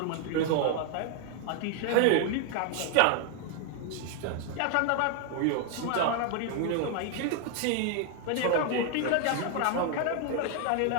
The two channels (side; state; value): both; different; correlation 0.00